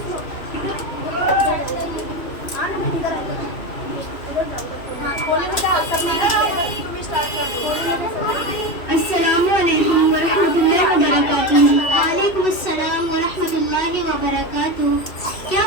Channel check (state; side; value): late; right; 2.7 ms